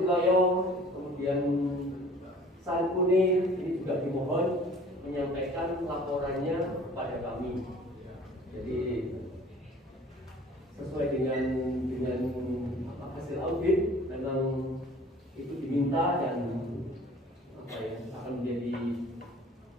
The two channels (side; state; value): both; normal; correlation 0.49